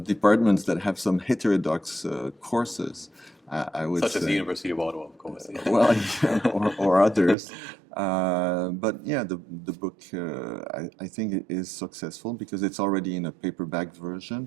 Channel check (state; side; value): drops out; left; at 7.4 s